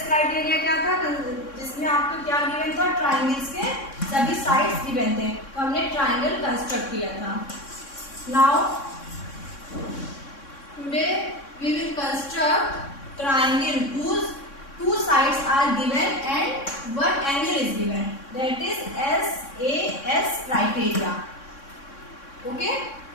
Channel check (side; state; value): right; late; 3.6 ms